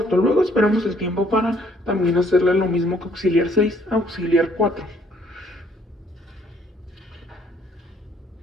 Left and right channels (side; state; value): both; normal; correlation 0.64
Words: luego esperamos el tiempo para también hacerle lo mismo que Auxiliar 6 a Auxiliar 4.